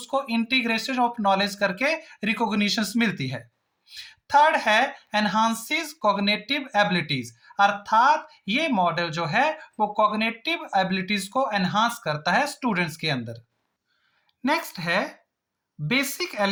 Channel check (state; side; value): identical; both; correlation 1.00